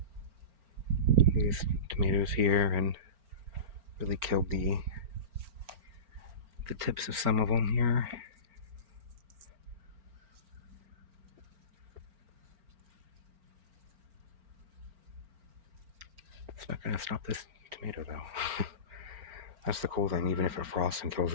these tomatoes here, and really killed the tips of some of them here. It's not going to stop this tomato though. That's the cool thing. Even if it frosts and kills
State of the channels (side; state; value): left; late; 4.4 ms